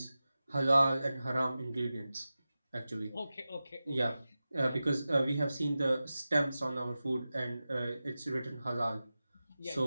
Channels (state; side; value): inverted; both; correlation -0.95